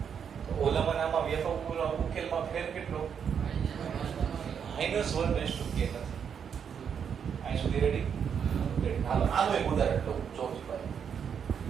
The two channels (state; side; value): quieter; left; 7.5 dB